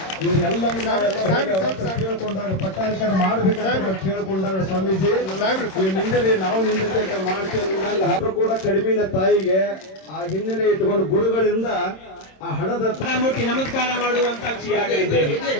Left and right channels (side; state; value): right; late; 26 ms